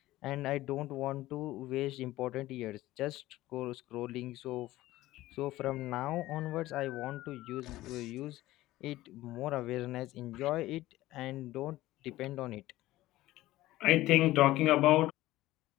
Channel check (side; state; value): right; quieter; 16.6 dB